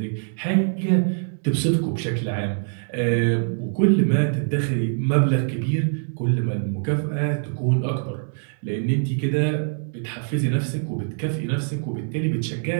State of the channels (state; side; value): silent; left; digital silence